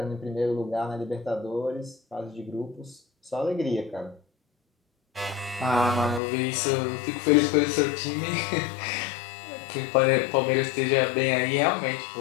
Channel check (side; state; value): right; drops out; at 6.2 s